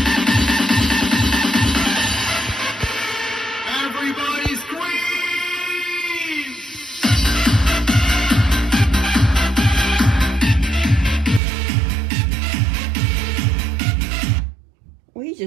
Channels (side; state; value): left; drops out; at 11.4 s